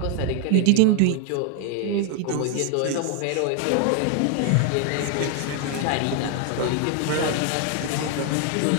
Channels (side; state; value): both; different; correlation 0.01